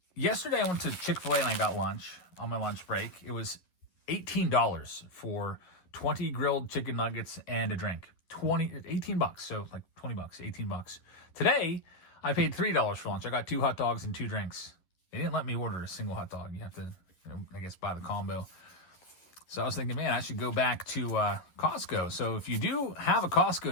yesterday I went to Chick-fil-A and I got lunch on my lunch break. It was $18 for 20 grilled chicken nuggets and a drink. $18, so like $20, $18. Today I paid $3 for lunch. I got 2 hot dogs and 2 drinks. They didn't let me order a single hot dog. You have to, you know, I guess buy the combo. So I was thinking, man, I should go back to Costco. So if you do have a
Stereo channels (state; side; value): late; right; 11 ms